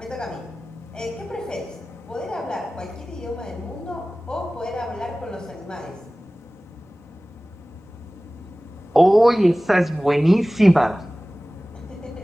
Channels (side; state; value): both; normal; correlation 0.98